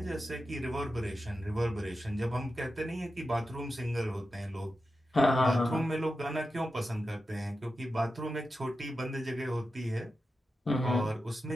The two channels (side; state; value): both; normal; correlation 0.91